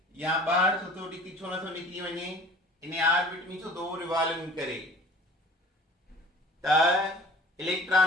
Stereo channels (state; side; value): normal; both; correlation 0.47